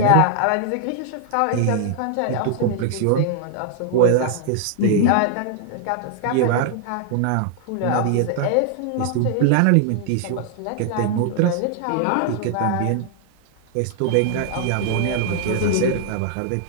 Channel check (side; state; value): both; different; correlation 0.00